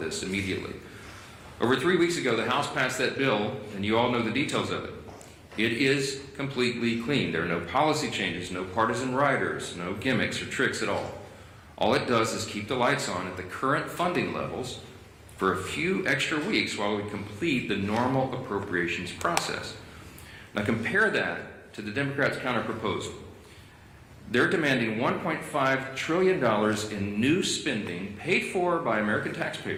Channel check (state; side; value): identical; both; correlation 1.00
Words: immediately. Over 3 weeks ago, the House passed that bill, and you all know the details of it. It is completely clean. There are no policy changes, no partisan riders, no gimmicks or tricks at all. All it does is keep the lights on at the current funding levels for a few extra weeks while we complete the normal appropriations process. Now compare that to the Democrats' counterproposal. They're demanding $1.5 trillion in new spending paid for by American